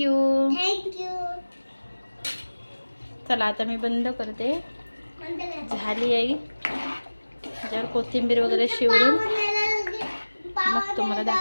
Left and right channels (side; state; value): both; inverted; correlation -1.00